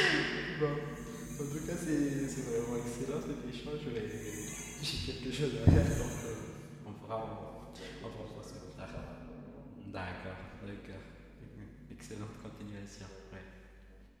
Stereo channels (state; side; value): identical; both; correlation 1.00